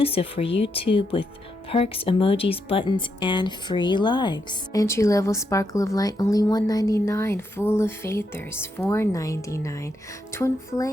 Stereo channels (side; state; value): both; normal; correlation 0.81